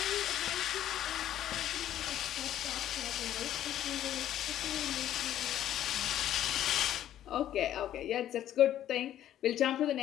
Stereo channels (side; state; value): right; quieter; 11.7 dB